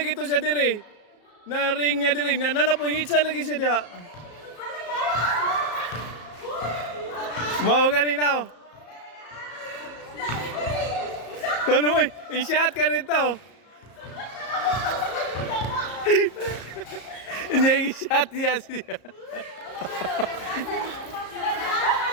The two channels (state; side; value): late; right; 34 ms